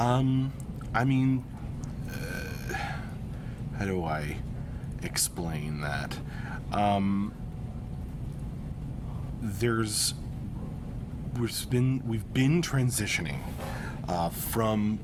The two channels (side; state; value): both; identical; correlation 1.00